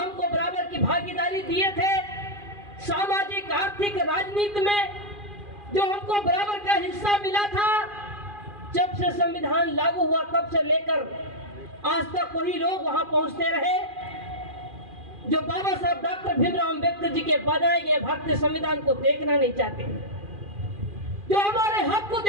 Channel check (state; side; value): late; left; 2.4 ms